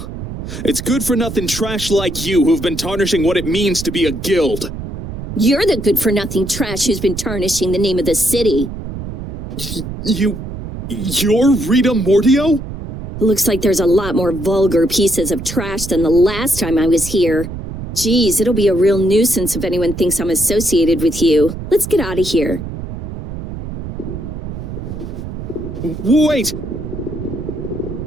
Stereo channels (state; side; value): noise; right; rumble, 8 dB below the sound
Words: It's good-for-nothing trash like you who've been tarnishing what it means to be a guild. You're the good-for-nothing trash who's been tarnishing the name of the city. You're Rita Mordio? Looks like there's a lot more vulgar pieces of trash than the last time I was here. Geez, it'll be a real nuisance if anyone thinks I'm associated with you. Let's get out of here. Wait!